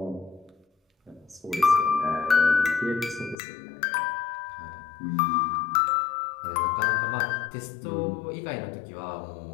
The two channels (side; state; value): right; drops out; at 3.4 s